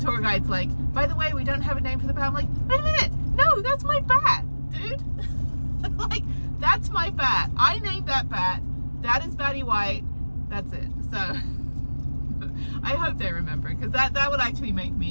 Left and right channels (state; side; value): inverted; both; correlation -1.00